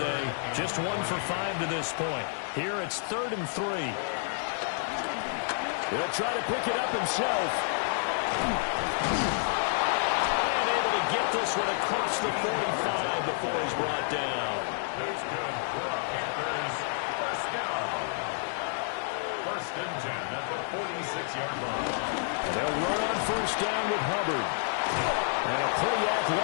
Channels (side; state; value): right; silent; digital silence